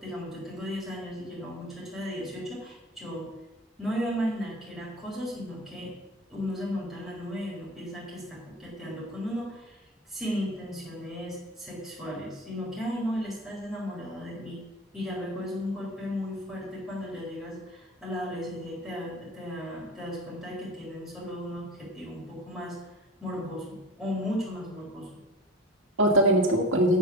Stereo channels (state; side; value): normal; both; correlation 0.36